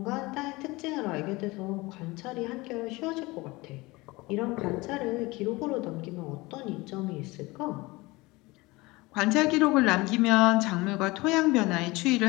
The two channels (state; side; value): quieter; right; 22.3 dB